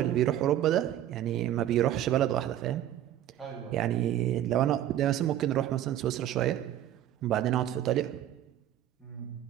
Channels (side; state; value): left; quieter; 11.9 dB